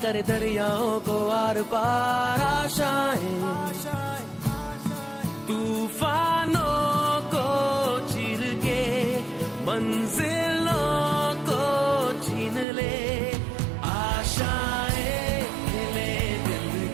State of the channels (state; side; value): drops out; left; at 12.7 s